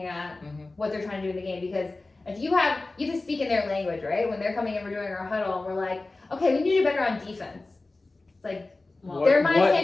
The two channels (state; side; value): quieter; right; 3.3 dB